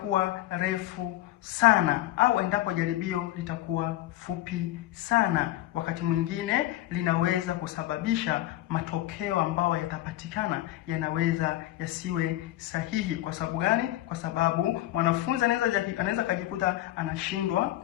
refu sana au endapo jaribio litakuwa fupi sana, wakati mwingine linaweza kusababisha matokeo ambayo yatapatikana yanaweza yasiwe sahihi. Kwa sababu gani? Kwa sababu mwanafunzi anaweza kujikuta anashindwa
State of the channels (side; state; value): right; quieter; 15.1 dB